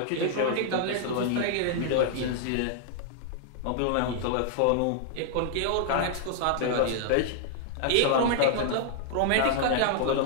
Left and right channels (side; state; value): both; different; correlation -0.01